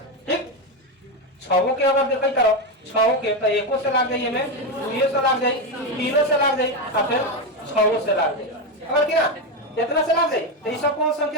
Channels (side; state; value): both; normal; correlation 0.10